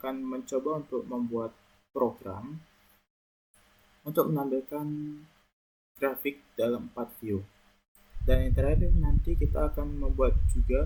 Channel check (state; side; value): identical; both; correlation 1.00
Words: mencoba untuk membuat program untuk menampilkan grafik dalam 4 view. Dan yang terakhir nanti kita akan membuat